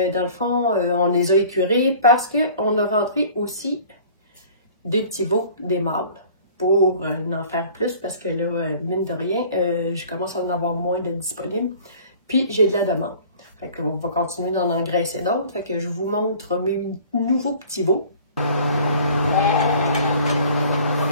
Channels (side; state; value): both; inverted; correlation -0.48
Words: le fond, on les a écurés parce qu'on a rentré aussi deux petits veaux, des mâles, pour en faire plus parce que là, mine de rien, je commence à en avoir moins de disponibles. Puis, j'ai de la demande. Fait qu'on va continuer d'en engraisser d'autres. Fait que je vous montre mes nouveaux petits veaux. Il